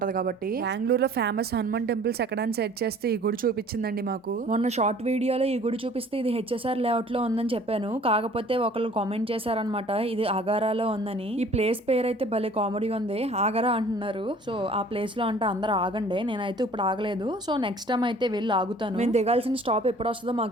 కాబట్టి. బెంగళూరులో ఫేమస్ హనుమాన్ టెంపుల్స్ ఎక్కడని సెర్చ్ చేస్తే ఈ గుడి చూపించిందండి మాకు. మొన్న షార్ట్ వీడియోలో ఈ గుడి చూపిస్తే ఇది హెచ్ఎస్ఆర్ లేఅవుట్ లో ఉందని చెప్పాను. కాకపోతే ఒకళ్ళు కామెంట్ చేశారనమాట ఇది ఆగారాలో ఉందని. ఈ ప్లేస్ పేరు అయితే భలే కామెడీ ఉంది. ఆగరా అంటున్నారు. సో ఆ ప్లేస్ లో అంటే అందరూ ఆగండి. నేనైతే ఇప్పుడు ఆగలేదు. సో నెక్స్ట్ టైం అయితే వెళ్ళి ఆగుతాను. మేము దిగాల్సిన స్టాప్ ఎప్పుడు వస్తుందో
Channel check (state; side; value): normal; both; correlation 0.51